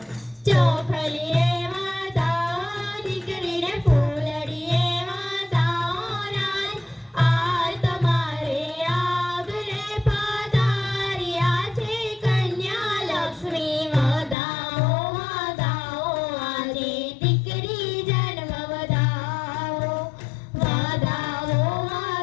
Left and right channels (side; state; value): right; drops out; at 14.4 s